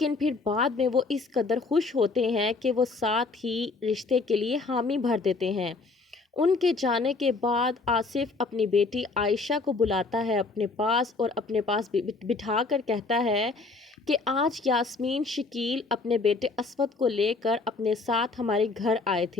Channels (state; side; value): quieter; right; 3.9 dB